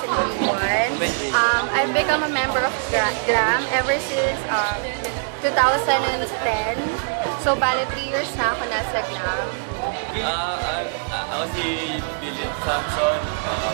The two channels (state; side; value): silent; left; digital silence